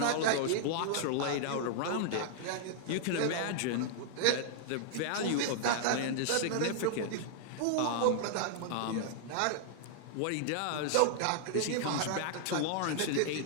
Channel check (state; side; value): different; both; correlation -0.01